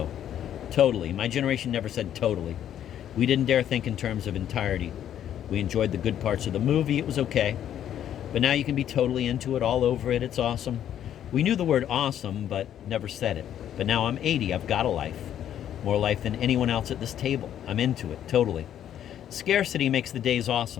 Totally. My generation never said totally. We didn't dare think in terms of entirety. We enjoyed the good parts of the movie. It was okay. But now you can be totally into it, all over it. It's awesome. We knew the word awesome, but never said it. But now I'm 80. I've got a life. More life than anyone else at this table. I'm into it, totally. Scarcity makes the days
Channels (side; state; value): right; quieter; 10.5 dB